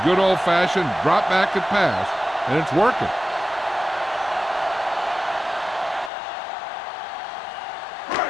good old-fashioned drop back and pass, and it's working.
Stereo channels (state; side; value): drops out; right; at 6.1 s